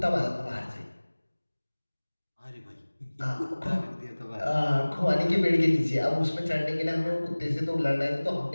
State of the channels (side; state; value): both; inverted; correlation -1.00